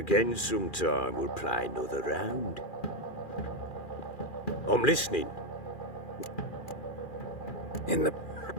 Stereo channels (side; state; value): right; late; 2.4 ms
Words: sometime, we'll play another round. I'm listening. In the...